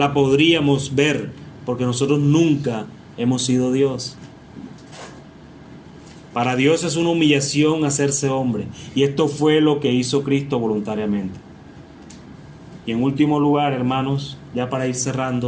podríamos ver, porque nosotros nunca hemos sido Dios. Para Dios es una humillación hacerse hombre, y esto fue lo que hizo Cristo voluntariamente. Y en último lugar, hermanos, ya para ir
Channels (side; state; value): both; identical; correlation 1.00